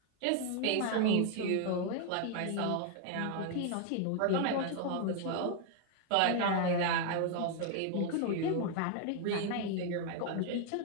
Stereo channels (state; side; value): different; both; correlation 0.00